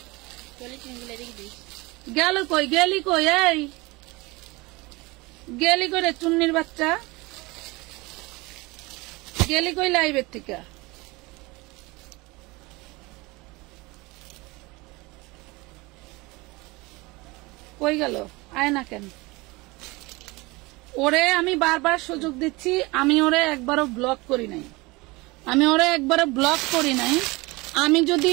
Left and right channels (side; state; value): left; quieter; 23.6 dB